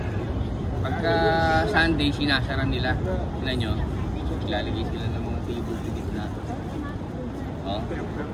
pagka Sunday sinasara nila. Tignan nyo, ilalagay sila ng mga table sa gitna. Oh.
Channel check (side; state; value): both; identical; correlation 1.00